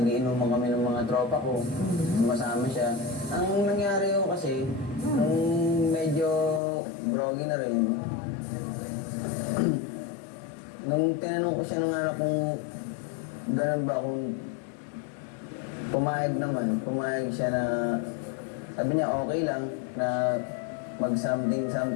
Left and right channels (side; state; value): right; drops out; at 6.6 s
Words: kami ng mga tropa ko, sumasama siya. Ang nangyari yun kasi, nung medyo groggy na rin, nung tinanong ko siya ng anak kung ganun ba, kung pumayag siya na, sabi niya okay lang na mag-something